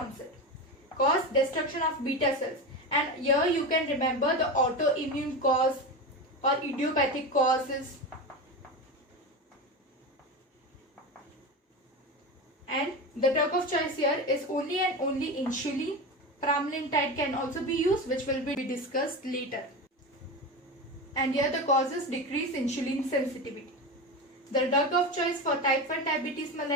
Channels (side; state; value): both; normal; correlation 0.22